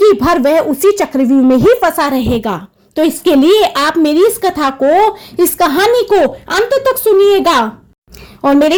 भर वह उसी चक्रव्यूह में ही फंसा रहेगा। तो इसके लिए आप मेरी इस कथा को, इस कहानी को अंत तक सुनिएगा और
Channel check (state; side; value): identical; both; correlation 1.00